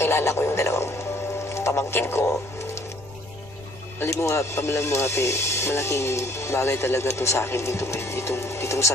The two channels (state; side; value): noise; left; rumble, 21 dB below the sound